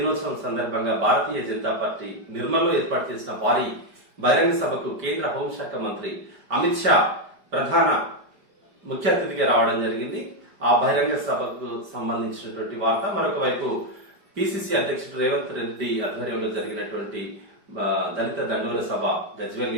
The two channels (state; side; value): late; left; 5.0 ms